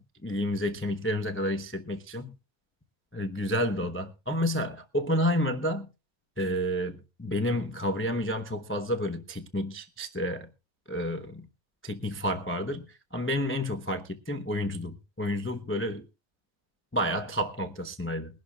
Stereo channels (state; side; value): normal; both; correlation 0.30